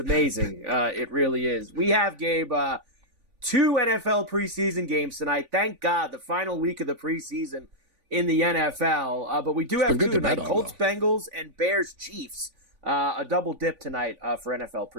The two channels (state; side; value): late; left; 4.0 ms